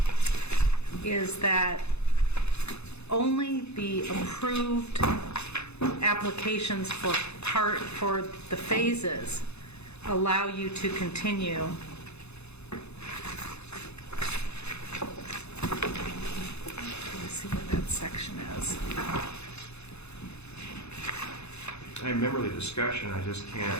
is that only the approved applications for the phases allow you to continue. Let me see where that section is. I remember the discussion, I just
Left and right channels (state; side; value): late; right; 0.80 ms